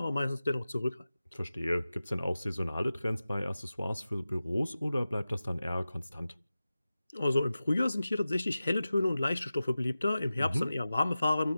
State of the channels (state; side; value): inverted; both; correlation -0.95